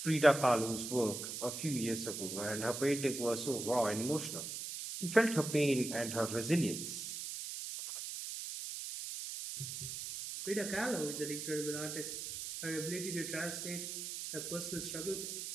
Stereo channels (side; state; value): right; noise; hiss, 6 dB below the sound